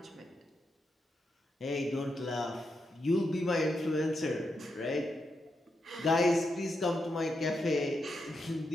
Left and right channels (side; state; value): both; normal; correlation 0.84